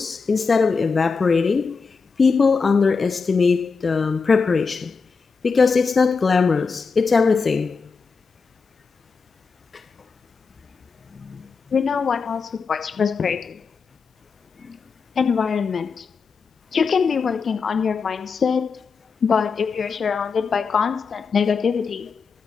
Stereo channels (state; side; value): quieter; right; 5.0 dB